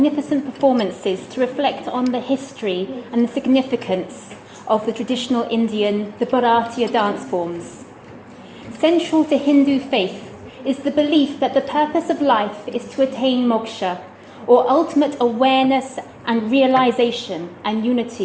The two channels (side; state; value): both; identical; correlation 1.00